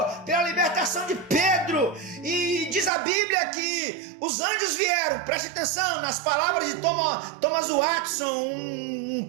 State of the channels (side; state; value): left; drops out; at 2.9 s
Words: pela libertação de Pedro, e diz a Bíblia que os anjos vieram. Preste atenção nas palavras de Thomas Watson, um